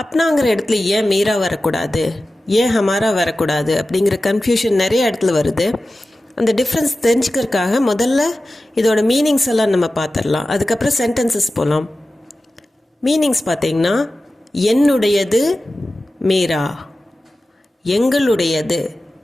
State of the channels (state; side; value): normal; both; correlation 0.95